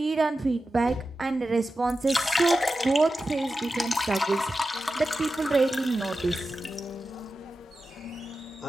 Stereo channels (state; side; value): normal; both; correlation 0.92